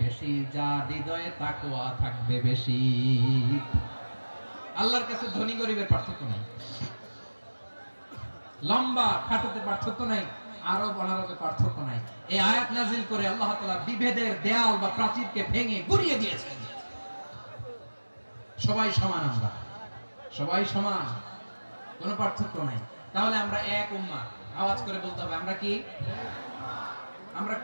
বেশি, যার হৃদয়ে তাকওয়া থাকবে বেশি। আল্লাহর কাছে ধনী গরিবের পার্থক্য নাই, লম্বা খাটোতে পার্থক্য নাই, আরব অনারবের পার্থক্য নাই। এই আয়াত নাজিল করে আল্লাহ তাআলা বিভেদের দেয়াল বা প্রাচীরকে ভেঙে গুড়িয়ে দিয়েছেন। সবাই সমান, আমরা সবাই সমান, কোনো পার্থক্য নাই। তাহলে আমরা এক উম্মাহ। আওয়াজ করে বলতে হবে আমরা কি? আমরা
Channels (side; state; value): both; inverted; correlation -1.00